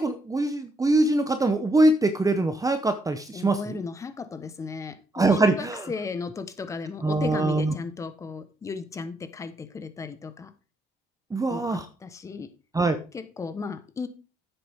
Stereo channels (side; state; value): both; normal; correlation 0.77